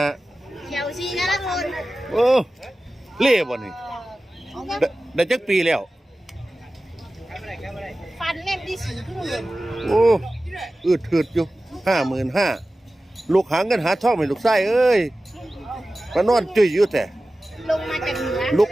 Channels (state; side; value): normal; both; correlation 0.96